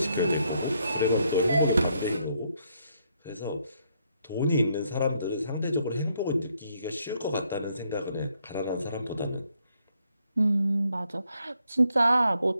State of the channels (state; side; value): inverted; both; correlation -0.74